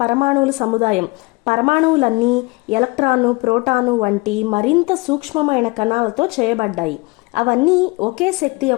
పరమాణువుల సముదాయం. పరమాణువులన్నీ ఎలక్ట్రాను, ప్రోటాను వంటి మరింత సూక్ష్మమైన కణాలతో చేయబడ్డాయి. అవన్నీ ఒకే శక్తి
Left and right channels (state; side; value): quieter; right; 26.3 dB